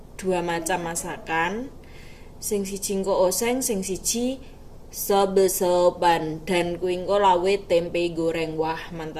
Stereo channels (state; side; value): identical; both; correlation 1.00